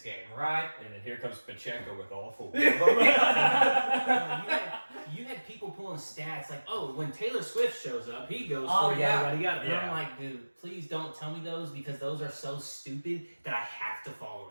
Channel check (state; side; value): inverted; both; correlation -1.00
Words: game, right? And then here comes Pacheco with all 4. You had people pulling stats like, oh, when Taylor Swift shows up, he goes Oh, for yeah. yada yada. And Yeah. I'm like, dude, please don't tell me those because those are so stupid that I have to follow